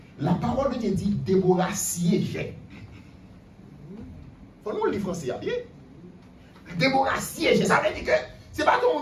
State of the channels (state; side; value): identical; both; correlation 1.00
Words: la parole de Dieu dit, Déborah siégeait. Faut nous le lire français, bien. Déborah siégeait, ça veut dire que, c'est pas ton